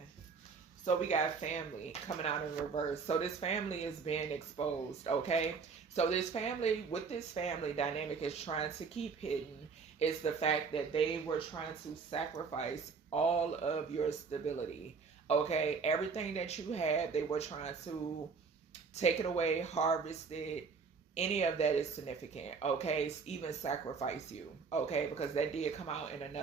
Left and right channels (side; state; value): left; quieter; 5.2 dB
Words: So we got family coming out in reverse. So this family is being exposed. Okay. So this family, what this family dynamic is trying to keep hidden is the fact that they were trying to sacrifice all of your stability. Okay. Everything that you had, they were trying to take it away, harvest it. Any of that is significant, okay? Even sacrifice you, okay? Because that did come out in